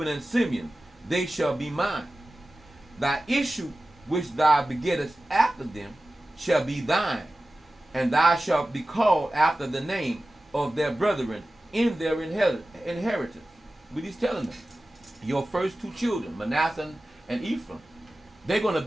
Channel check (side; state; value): both; normal; correlation 0.95